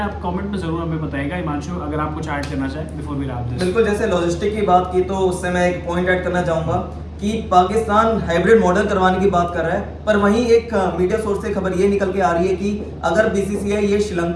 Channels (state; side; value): identical; both; correlation 1.00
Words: है, आप कमेंट में जरूर हमें बताइएगा। हिमांशु, अगर आप कुछ ऐड करना चाहें बिफोर वी रैप दिस। बिल्कुल, जैसे लॉजिस्टिक की बात की तो उससे मैं एक पॉइंट ऐड करना चाहूँगा कि पाकिस्तान हाइब्रिड मॉडल करवाने की बात कर रहा है, पर वहीं एक मीडिया सोर्स से खबर ये निकल के आ रही है कि अगर बीसीसीआई ये